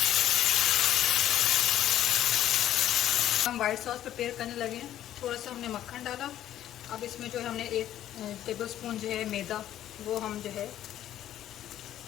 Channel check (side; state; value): right; quieter; 12.0 dB